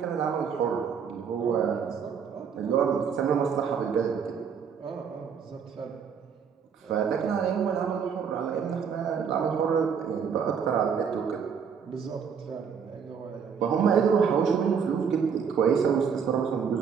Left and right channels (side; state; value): left; quieter; 6.8 dB